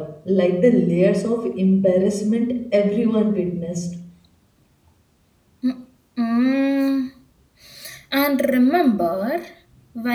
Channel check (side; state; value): both; identical; correlation 1.00